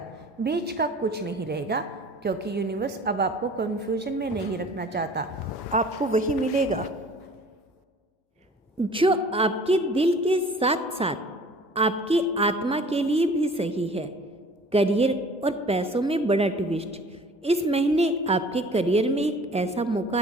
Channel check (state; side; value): normal; both; correlation 0.48